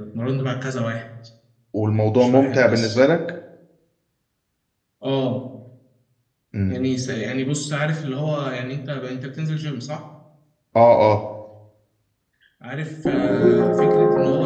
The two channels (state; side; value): identical; both; correlation 1.00